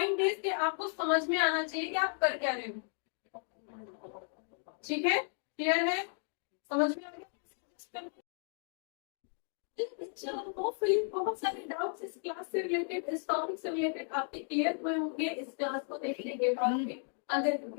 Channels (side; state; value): right; silent; 55 dB below the other